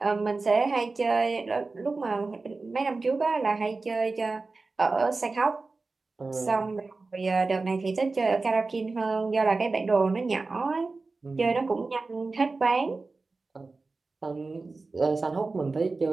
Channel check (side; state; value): left; quieter; 3.8 dB